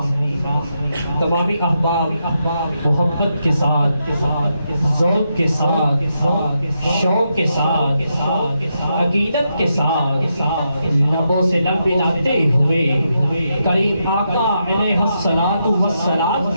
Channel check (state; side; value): inverted; both; correlation -0.83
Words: تمامی احباب محبت کے ساتھ، ذوق کے ساتھ، شوق کے ساتھ، عقیدت کے ساتھ لبوں سے لب ملاتے ہوئے کریم آقا علیہ الصلوۃ والسلام